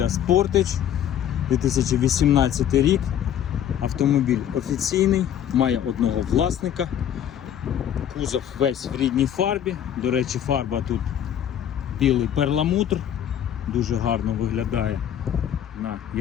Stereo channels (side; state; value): right; quieter; 10.1 dB